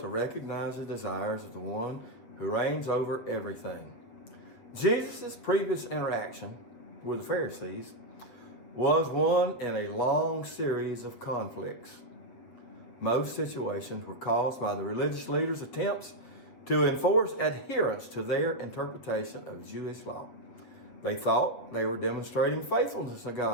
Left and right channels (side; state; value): right; late; 7.7 ms